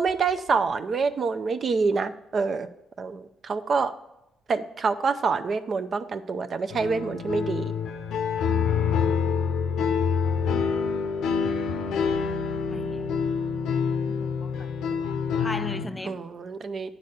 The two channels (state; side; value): normal; both; correlation 0.72